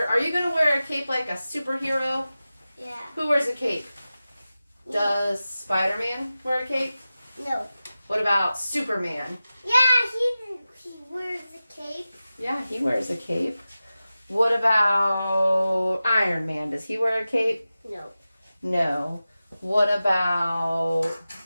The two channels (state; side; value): inverted; both; correlation -0.95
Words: Are you going to wear a cape like a superhero? Yeah. Who wears a cape? Does Spider-Man wear a cape? No. What about Superman? Yeah, he wears a cape. Yeah, he wears a cape. What about Iron Man? Does he wear a cape? No. No. What about